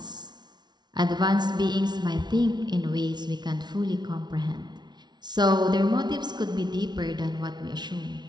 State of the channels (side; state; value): left; late; 0.20 ms